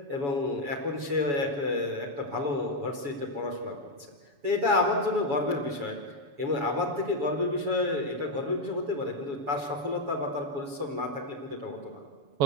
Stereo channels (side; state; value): left; late; 7.1 ms